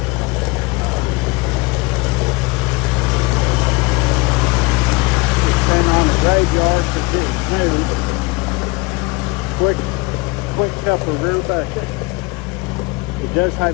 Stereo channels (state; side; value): quieter; right; 25.0 dB